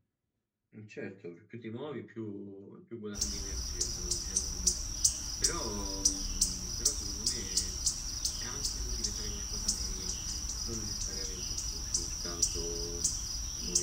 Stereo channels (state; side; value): identical; both; correlation 1.00